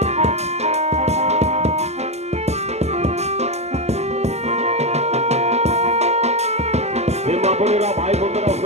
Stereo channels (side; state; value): left; late; 0.32 ms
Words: বোনেরা ভাই বোনেরা